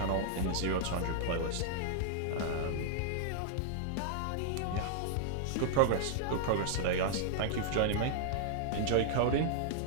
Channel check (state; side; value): different; both; correlation -0.01